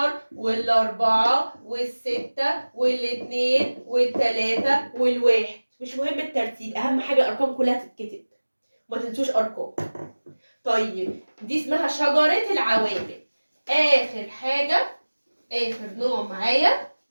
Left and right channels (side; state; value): both; inverted; correlation -1.00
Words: وال4 وال6 وال2 وال3 وال1. مش مهم الترتيب، اهم حاجه الارقام كلها تتكتب، ما تنسوش ارقام. طيب دي اسمها شجره العوامل. اخر حاجه، اخر نوع معايا